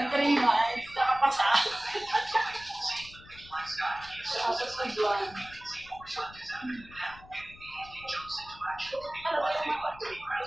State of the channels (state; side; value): noise; left; rumble, 20 dB below the sound